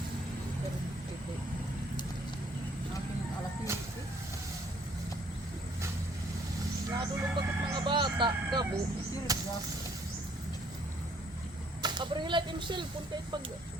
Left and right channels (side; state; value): both; normal; correlation 0.63